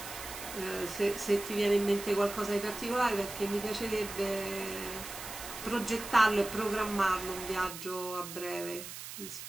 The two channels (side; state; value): right; noise; hiss, 10 dB below the sound